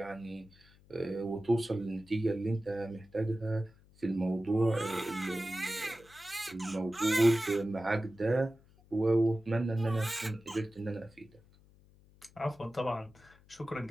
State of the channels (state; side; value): noise; left; hum, 27 dB below the sound